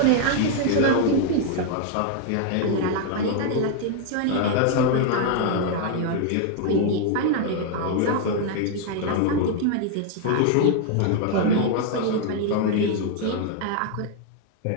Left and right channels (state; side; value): different; both; correlation 0.00